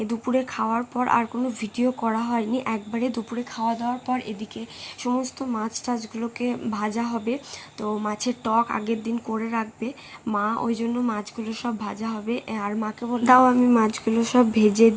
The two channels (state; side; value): identical; both; correlation 1.00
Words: দুপুরে খাওয়ার পর আর কোনো ভিডিও করা হয়নি। একবারে দুপুরে খাওয়া দাওয়ার পর এদিকে সমস্ত মাছ টাছগুলোকে ভাজা হবে। তো মাছের টক আগের দিন করে রাখবে মা, ওই জন্য মাছগুলো সব ভাজা হবে। আর মাকে দাও আমি মাছগুলো সব ভেজে